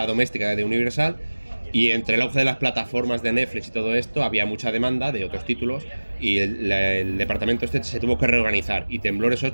doméstica de Universal, y entre el auge de las plataformas de Netflix y todo esto, había mucha demanda de otros títulos, y el departamento se tuvo que reorganizar. Y Temblores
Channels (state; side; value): inverted; both; correlation -1.00